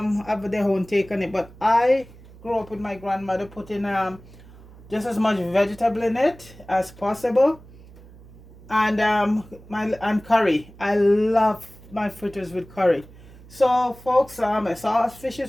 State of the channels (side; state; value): right; noise; hum, 21 dB below the sound